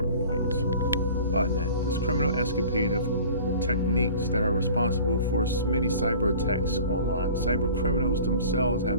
points. Botnet, this criminal escapade of techniques that are responsible for many cyber attacks online. Cyber criminals themselves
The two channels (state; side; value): inverted; both; correlation -0.44